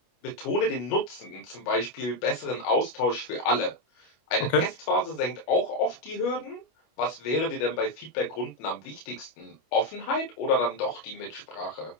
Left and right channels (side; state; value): right; late; 25 ms